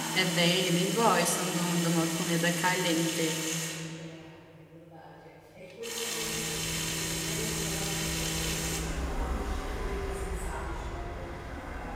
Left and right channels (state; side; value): identical; both; correlation 1.00